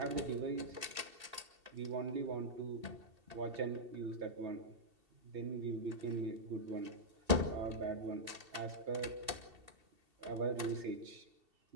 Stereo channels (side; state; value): left; late; 2.7 ms